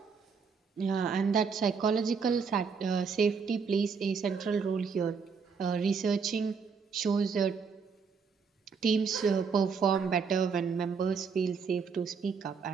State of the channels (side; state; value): left; quieter; 5.7 dB